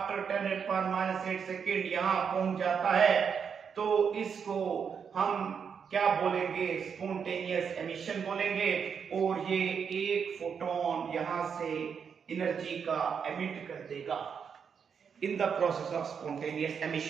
10⁻⁸ सेकेंड यहां पहुंच जाता है, तो इसको हम क्या बोलेंगे? स्पॉन्टेनियस एमिशन बोलेंगे। और ये एक फोटोन यहां से एनर्जी का एमिट कर देगा in the process of spontaneous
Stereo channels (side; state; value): left; quieter; 6.8 dB